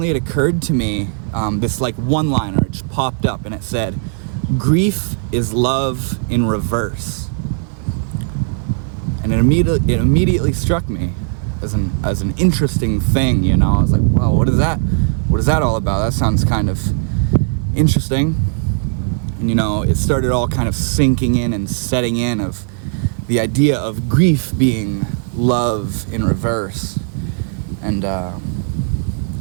it occurred to me, this one-liner, it just popped up and it said, "Grief is love in reverse." And it immediately struck me as an interesting thing, I was like, wow, what is that all about? That sounds kind of interesting. And it started all kind of sinking in and setting in of the idea of grief being love in reverse. And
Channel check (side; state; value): left; silent; 58 dB below the other